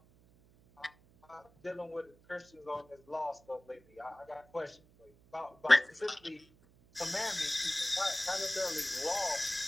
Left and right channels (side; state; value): right; noise; hum, 28 dB below the sound